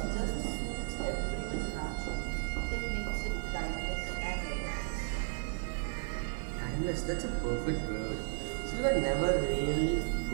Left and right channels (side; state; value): left; silent; digital silence